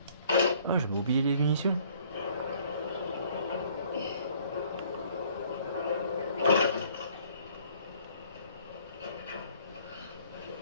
Ah, j'avais oublié les munitions.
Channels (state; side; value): inverted; both; correlation -0.58